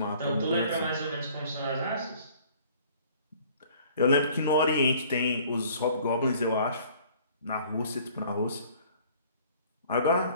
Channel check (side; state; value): both; inverted; correlation -0.53